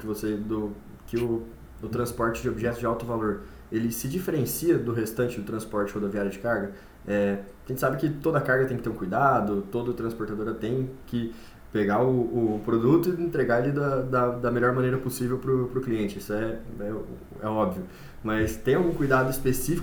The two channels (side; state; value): both; identical; correlation 1.00